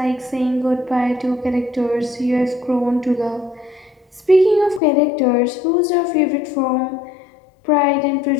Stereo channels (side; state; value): right; drops out; at 4.8 s